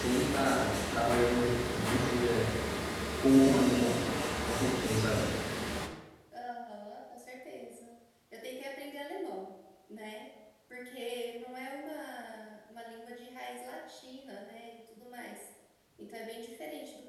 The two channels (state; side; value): identical; both; correlation 1.00